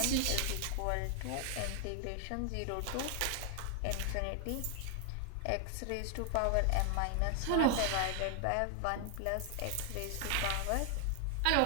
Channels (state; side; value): different; both; correlation 0.00